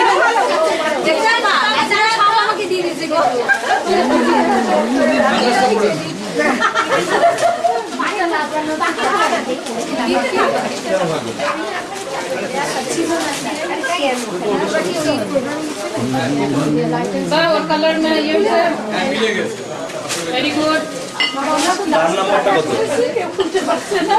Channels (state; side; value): identical; both; correlation 1.00